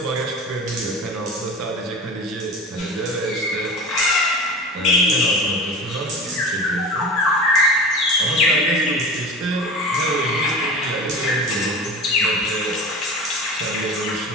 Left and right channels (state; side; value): normal; both; correlation 0.33